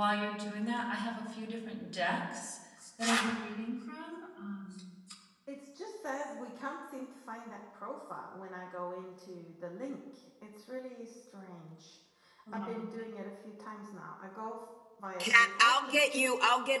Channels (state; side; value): identical; both; correlation 1.00